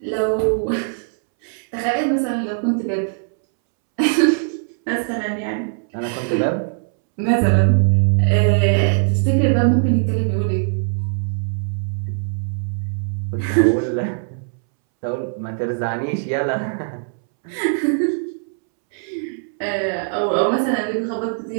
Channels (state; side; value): silent; left; 65 dB below the other